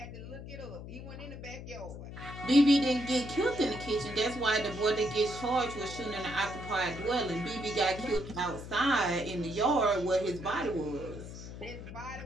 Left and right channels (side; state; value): left; noise; hum, 11 dB below the sound